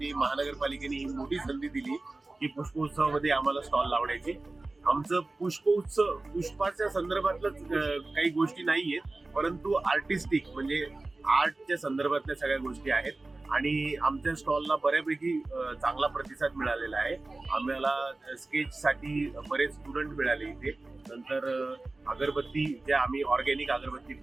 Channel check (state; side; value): quieter; left; 3.2 dB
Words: महानगरपालिकेने ही मोठी संधी दिली की पुष्पोत्सवामध्ये आम्हाला स्टॉल लावण्याची। आमचं पुष्पोत्सव पुष्पाच्या संदर्भातलंच काही गोष्टी नाहीयेत, परंतु आर्टिस्टिक म्हणजे आर्टच्या संदर्भातल्या सगळ्या गोष्टी आहेत आणि आमच्या स्टॉलला बऱ्यापैकी चांगला प्रतिसाद मिळालेला आहे। आम्हाला स्केचसाठी बरेच स्टुडंट मिळाले इथे। नंतर अगरबत्ती ज्या आम्ही ऑर्गॅनिक अगरबत्ती